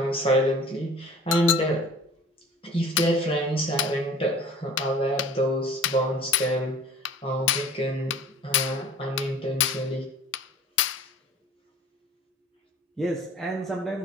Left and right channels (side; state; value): both; normal; correlation 0.46